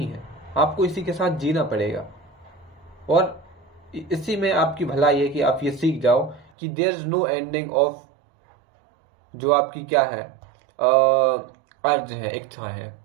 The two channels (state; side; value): drops out; left; at 6.5 s